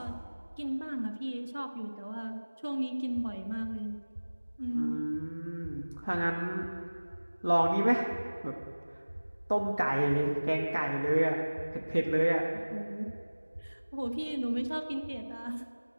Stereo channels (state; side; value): inverted; both; correlation -1.00